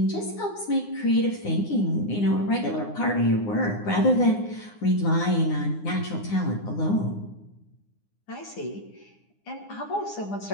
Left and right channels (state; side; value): late; right; 9.8 ms